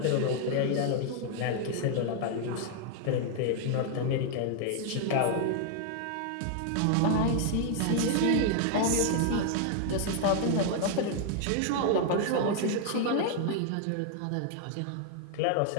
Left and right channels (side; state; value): both; different; correlation 0.00